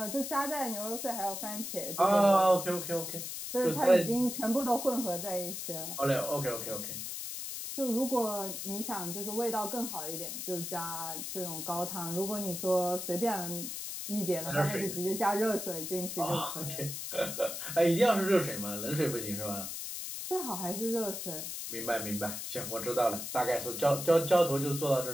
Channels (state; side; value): noise; left; hiss, 6 dB below the sound